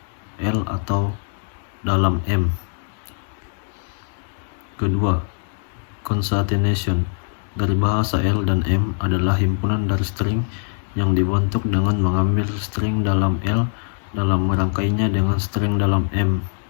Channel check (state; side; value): silent; right; digital silence